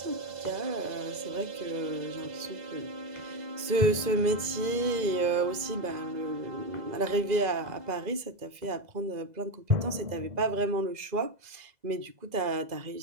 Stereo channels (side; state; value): left; late; 2.0 ms